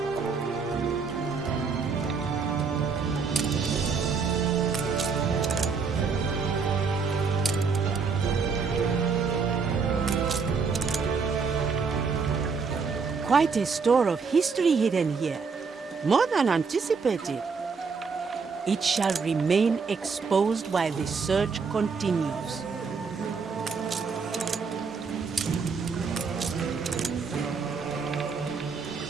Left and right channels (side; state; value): left; quieter; 5.2 dB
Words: Quite a store of history hidden here. More than anticipated. It shall remain exposed while the search continues.